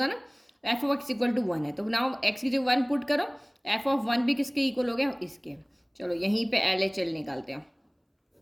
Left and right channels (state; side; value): identical; both; correlation 1.00